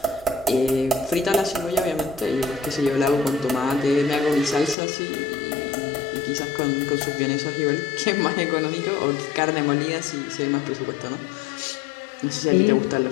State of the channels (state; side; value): drops out; right; at 4.8 s